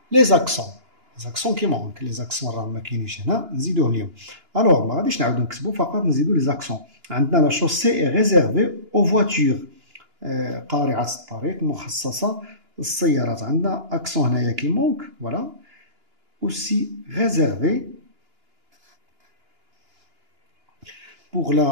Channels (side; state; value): left; late; 2.9 ms